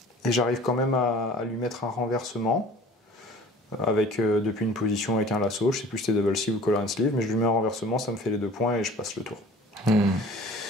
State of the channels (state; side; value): normal; both; correlation 0.46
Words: j'arrive quand même à lui mettre un renversement avec depuis une position avec un lasso, je sais plus si c'était double sleeve ou collar and sleeve, mais je lui mets un renversement, ça me fait les 2 points et je passe le tour.